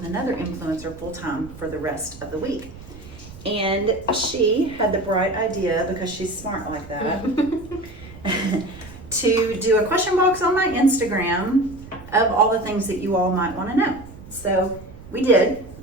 another influencer full-time for the rest of the week. And she had the bright idea, because she's smart like that, to do a question box on my Instagram of all the things that you all might want to know. So we did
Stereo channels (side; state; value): right; noise; rumble, 17 dB below the sound